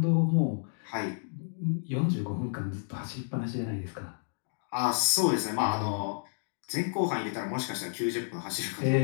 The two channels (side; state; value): right; silent; digital silence